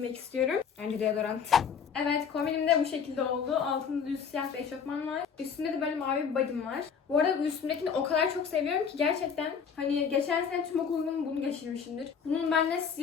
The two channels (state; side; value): quieter; right; 6.6 dB